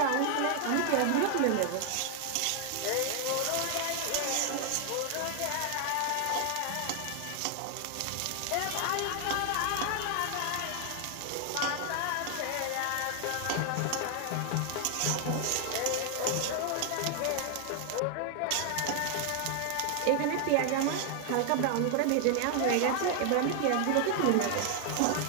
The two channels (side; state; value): both; different; correlation 0.00